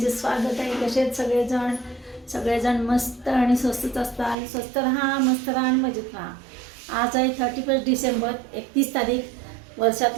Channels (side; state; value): left; drops out; at 4.4 s